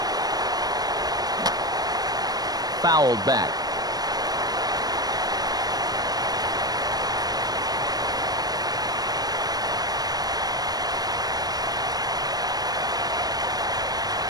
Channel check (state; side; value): late; left; 0.19 ms